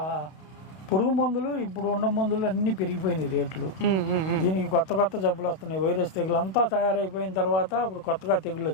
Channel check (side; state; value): right; late; 32 ms